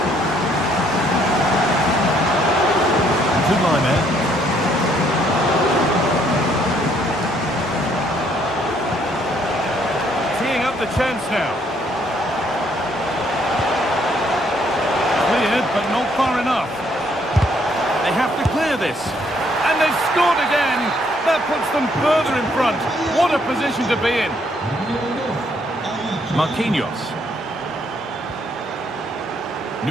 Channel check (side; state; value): both; normal; correlation 0.68